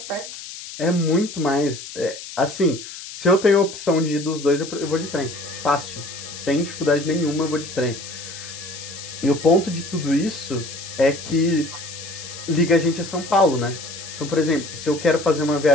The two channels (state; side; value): noise; left; hiss, 12 dB below the sound